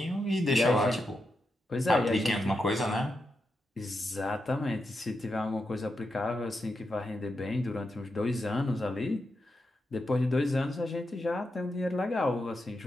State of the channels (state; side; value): normal; both; correlation 0.86